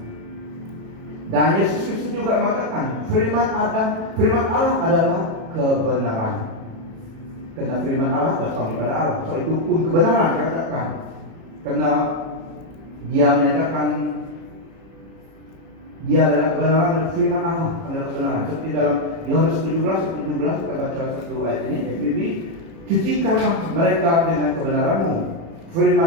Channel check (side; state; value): left; late; 37 ms